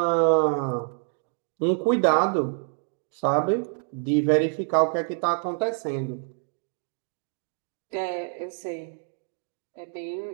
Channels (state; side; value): silent; left; 60 dB below the other